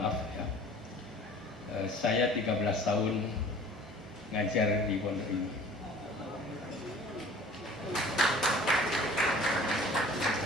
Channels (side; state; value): both; normal; correlation 0.48